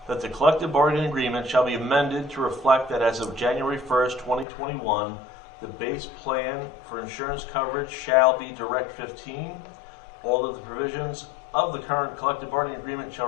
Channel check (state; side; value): drops out; right; at 4.5 s